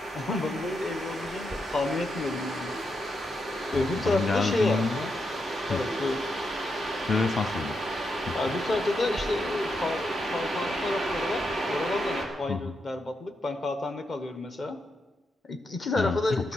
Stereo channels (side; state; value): both; normal; correlation 0.83